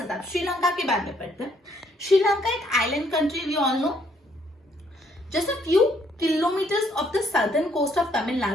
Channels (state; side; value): normal; both; correlation 0.68